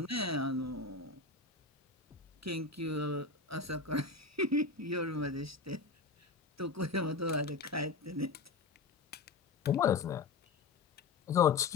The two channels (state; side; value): quieter; right; 4.1 dB